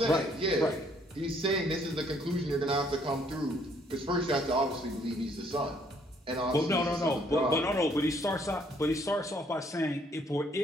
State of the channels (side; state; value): both; normal; correlation 0.65